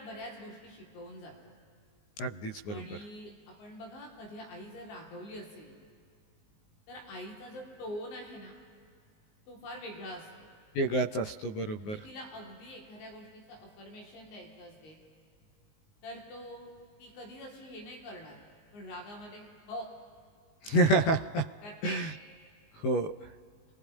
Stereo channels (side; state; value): right; late; 19 ms